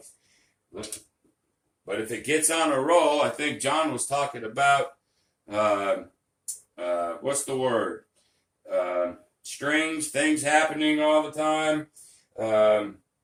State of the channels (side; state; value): both; identical; correlation 1.00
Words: But if it gets on a roll, I think John was talking about, what's the word? Strings, things happening all the time.